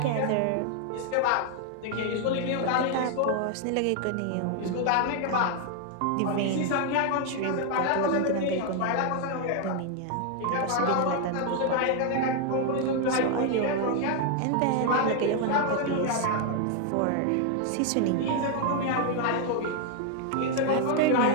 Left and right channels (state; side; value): different; both; correlation 0.00